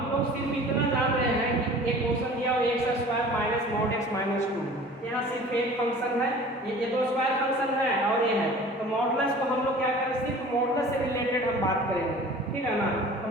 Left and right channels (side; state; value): both; normal; correlation 0.44